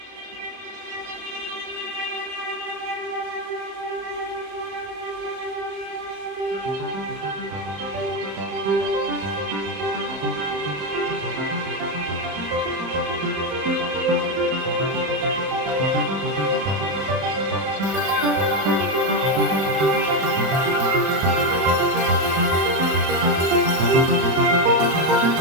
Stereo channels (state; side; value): late; left; 31 ms